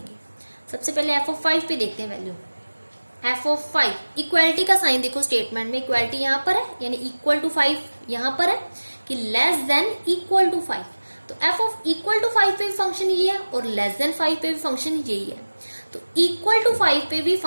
सबसे पहले f ऑफ 5 पे देखते हैं वैल्यू, f ऑफ 5, इक्वालिटी का साइन देखो स्टेटमेंट में, इक्वालिटी यहाँ पर है, यानी इक्वल टू 5 यहाँ पर है कि लेस देन इक्वल टू 5। तो f ऑफ इक्वल टू 5 पे भी फंक्शन ये है और लेस देन 5 पे भी फंक्शन यही है। तो इक्वल टू 5 पे भी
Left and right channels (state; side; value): inverted; both; correlation -1.00